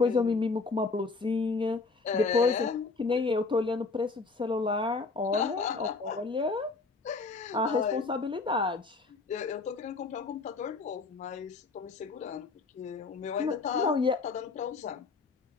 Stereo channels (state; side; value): quieter; right; 4.1 dB